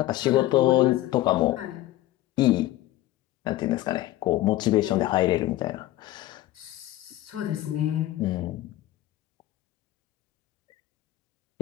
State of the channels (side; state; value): right; quieter; 15.6 dB